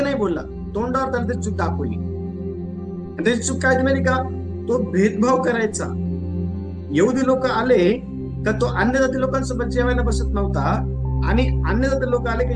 नाही बोलला, तोंडावर त्याला त्याची चूक दाखवली. त्याची चूक काय माहिती का? तो भेदभाव करायचा. यहुदी लोक आले का तो अन्य जाती लोकांसोबत जेवायला बसत नव्हता, आणि अन्य जाती लोक आले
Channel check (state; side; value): identical; both; correlation 1.00